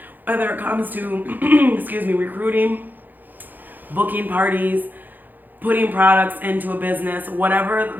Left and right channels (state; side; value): late; left; 0.086 ms